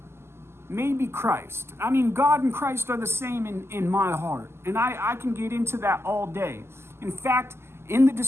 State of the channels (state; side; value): late; left; 0.12 ms